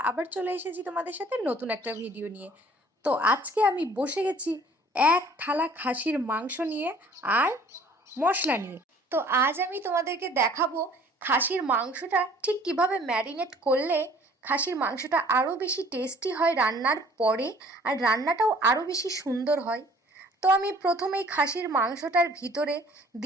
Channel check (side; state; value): both; normal; correlation 0.54